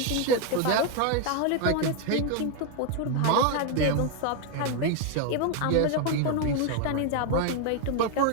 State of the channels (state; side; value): different; both; correlation 0.01